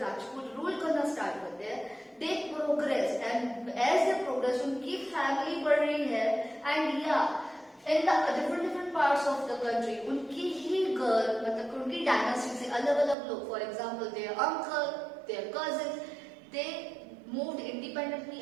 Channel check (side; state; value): left; drops out; at 13.2 s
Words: rule करना start करते हैं, they progress, and as they progress उनकी family बढ़ रही है, and in the different parts of the country उनकी ही girl, मतलब उनकी dynasty से अलग लोग, for example their uncle, their cousins, they moved independently